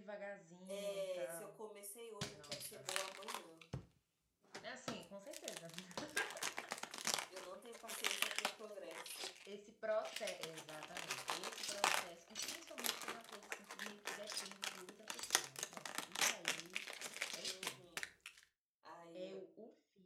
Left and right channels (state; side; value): identical; both; correlation 1.00